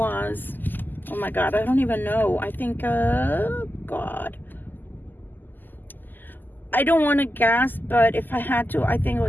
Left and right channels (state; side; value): late; right; 0.088 ms